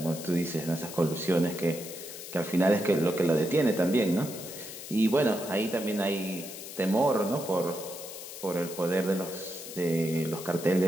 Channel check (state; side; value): noise; left; hiss, 11 dB below the sound